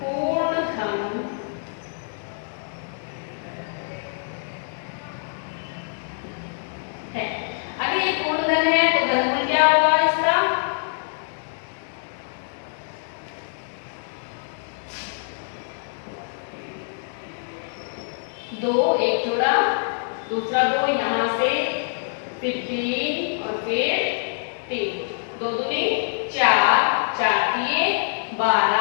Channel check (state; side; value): silent; right; digital silence